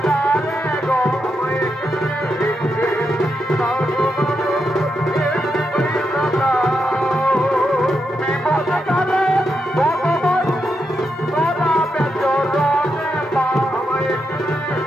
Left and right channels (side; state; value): both; normal; correlation 0.83